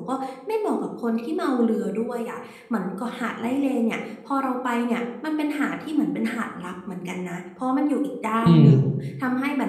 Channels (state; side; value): identical; both; correlation 1.00